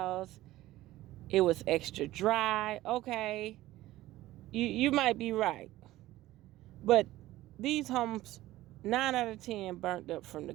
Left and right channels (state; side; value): quieter; left; 16.1 dB